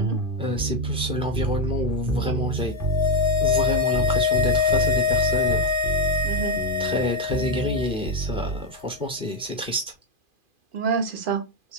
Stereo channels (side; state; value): left; late; 2.5 ms